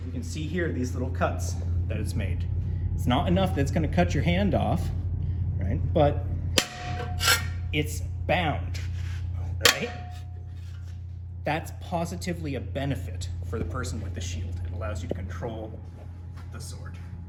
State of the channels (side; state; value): both; identical; correlation 1.00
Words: You can see here these little cuts that it's made. It's not enough that it's going to cut your hand off, right? But it's bound, right? that's positively a benefit for the person with the shield. It allows you to control the sword.